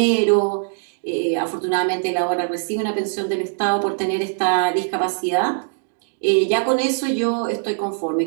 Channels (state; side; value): silent; left; digital silence